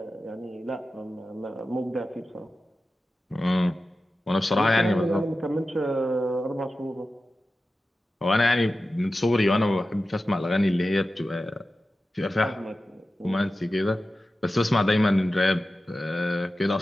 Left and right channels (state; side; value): normal; both; correlation 0.93